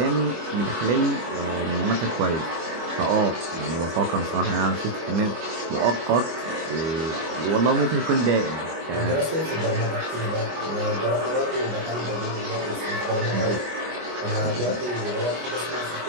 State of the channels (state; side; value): late; left; 25 ms